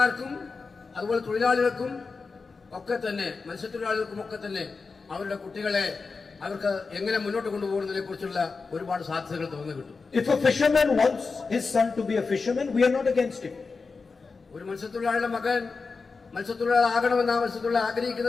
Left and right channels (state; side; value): quieter; right; 4.5 dB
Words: അതുപോലെ തൊഴിലാളികൾക്കും ഒക്കെ തന്നെ മത്സ്യത്തൊഴിലാളികൾക്കും ഒക്കെ തന്നെ അവരുടെ കുട്ടികളെ അവർക്ക് എങ്ങനെ മുന്നോട്ട് കൊണ്ടുപോകുന്നതിനെ കുറിച്ചുള്ള ഒരുപാട് സാധ്യതകൾ തുറന്നു കിട്ടും. If a fisherman wants his son to be a fisherman, we are not against him. ഒരു മത്സ്യത്തൊഴിലാളിയുടെ മകൻ മത്സ്യത്തൊഴിലാളി ആകണമെന്ന് ആ മത്സ്യത്തൊഴിലാളി